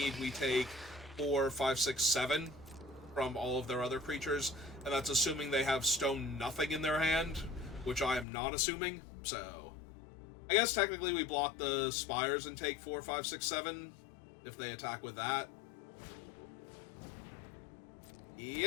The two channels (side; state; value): right; drops out; at 8.2 s